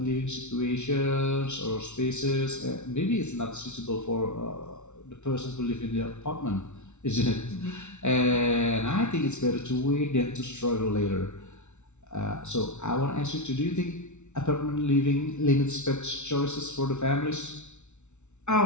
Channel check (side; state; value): right; late; 0.82 ms